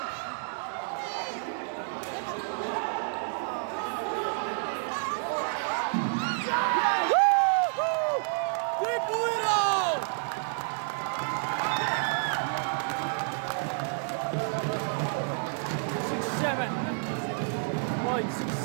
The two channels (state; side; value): silent; left; digital silence